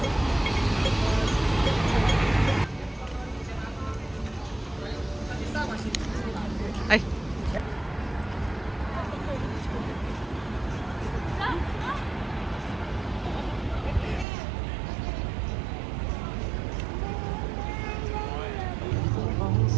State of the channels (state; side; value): drops out; left; at 14.2 s